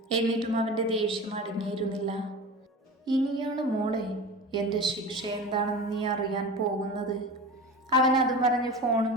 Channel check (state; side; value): normal; both; correlation 0.32